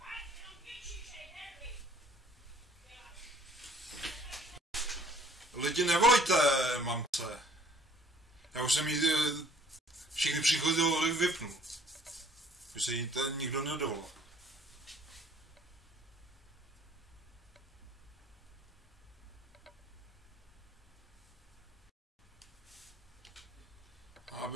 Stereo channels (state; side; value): normal; both; correlation 0.57